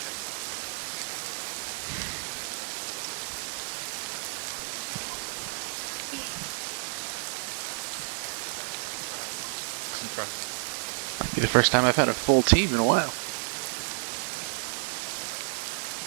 Might be the first time I've had a full team in a while.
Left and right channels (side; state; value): left; silent; digital silence